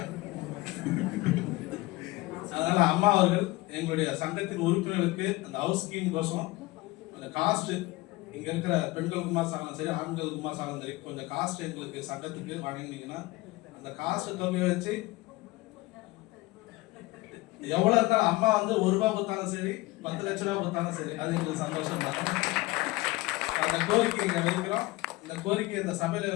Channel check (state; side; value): quieter; right; 20.8 dB